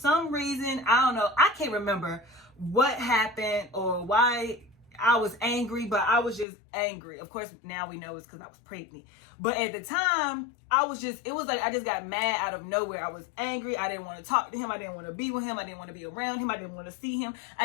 reason, I don't know, I can't remember what happened or why I was angry, but I was just angry. Of course, now we know it's because I was pregnant. But at the time, I was just, it was like I just got mad out of nowhere. I was angry. I didn't want to talk to him. I didn't want to be with him. I didn't want to be around him. I didn't want to see him.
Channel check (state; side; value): drops out; right; at 6.5 s